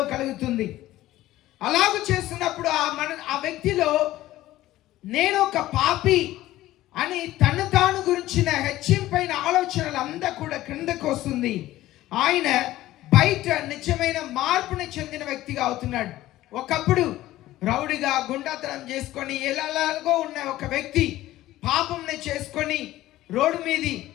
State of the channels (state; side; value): quieter; right; 15.5 dB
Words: కలుగుతుంది. అలాగూ చేస్తున్నప్పుడు ఆ వ్యక్తిలో నేను ఒక పాపి అని తను తాను గురించిన హెచ్చింపైన ఆలోచనలు అంతా కూడా క్రిందకు వస్తుంది. ఆయన బయట నిజమైన మార్పుని చెందిన వ్యక్తిగా అవుతున్నాడు. ఒకప్పుడు రౌడిగా గుండాతనం చేసుకొని ఎలాగో ఉన్న ఒక వ్యక్తి పాపంని చేసుకొని రోడ్డు మీది